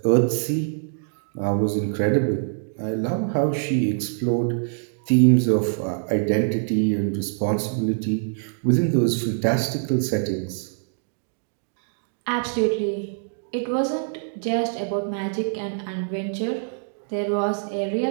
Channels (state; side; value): silent; left; digital silence